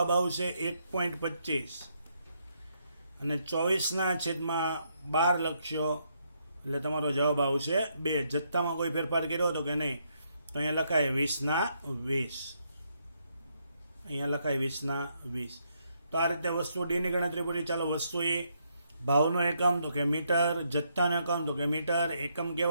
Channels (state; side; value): inverted; both; correlation -0.76